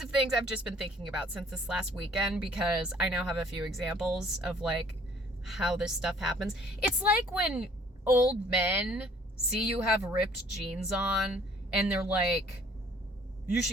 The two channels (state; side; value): normal; both; correlation 0.57